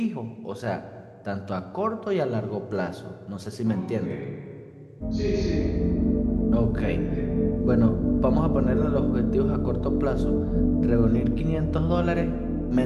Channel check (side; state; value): both; identical; correlation 1.00